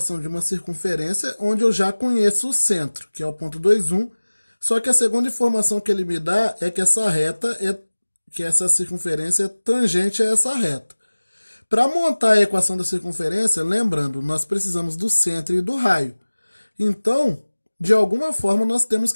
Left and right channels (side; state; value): both; inverted; correlation -1.00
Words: de uma circunferência onde eu já conheço o centro, que é o ponto 2, 1. Só que a segunda informação que ele me dá é que essa circunferência é tangente a essa reta. Para montar a equação da circunferência, lembrando, nós precisamos do centro e do raio. Então, de alguma forma, nós temos